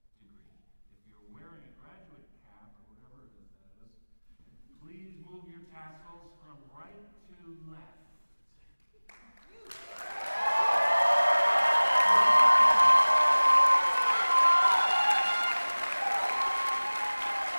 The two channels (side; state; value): both; inverted; correlation -1.00